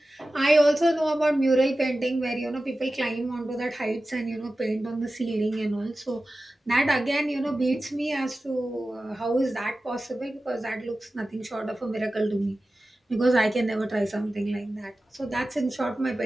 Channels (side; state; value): both; normal; correlation 0.95